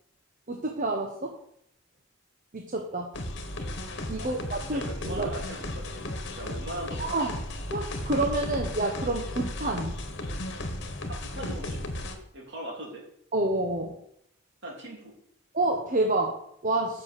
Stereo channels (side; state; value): both; normal; correlation 0.09